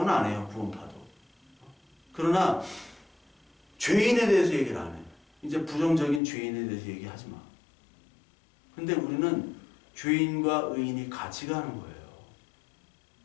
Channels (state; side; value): drops out; right; at 6.2 s